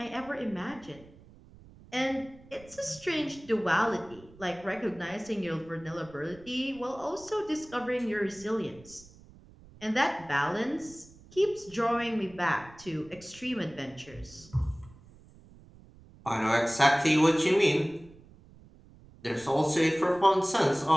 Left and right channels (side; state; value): right; noise; rumble, 23 dB below the sound